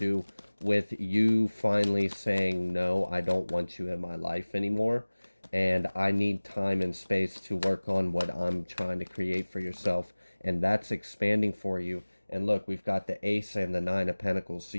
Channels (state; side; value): inverted; both; correlation -1.00